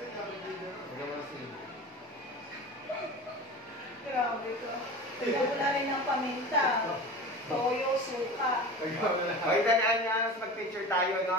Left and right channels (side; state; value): both; normal; correlation 0.33